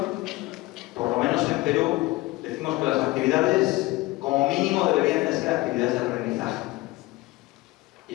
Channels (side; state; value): right; quieter; 20.4 dB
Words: por lo menos en Perú, decimos que las actividades como mínimo deberían de ser actividades de aprendizaje. Y